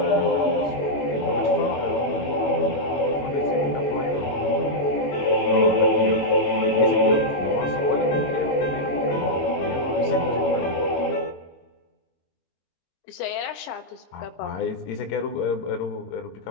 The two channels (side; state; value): right; late; 21 ms